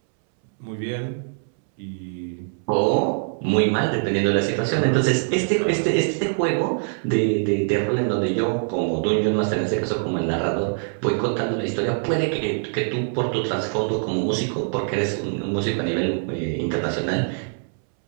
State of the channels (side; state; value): left; silent; 63 dB below the other